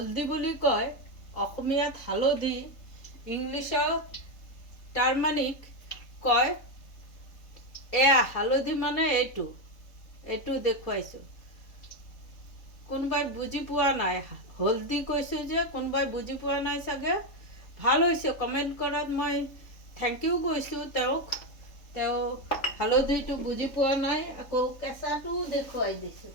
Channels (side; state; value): right; late; 3.7 ms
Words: বুলি কয়, অসমীয়াত হালধি, ইংলিছত টাৰ্মাৰিক কয়। এয়া হালধি মানে এইটো দেখুৱাইছোঁ। কোনোবাই বুজি পোৱা নাই, হলদি কৈছোঁ যে কোনোবাই বুজি পোৱা নাই চাগে। ভাল হৈছে, কমেণ্ট কৰাত মই থেংক ইউ কৈছোঁ তেওঁক। তেওঁ হালধিটো বুজি পোৱা নাই। আকৌ কেঁচাটোও দেখুৱাই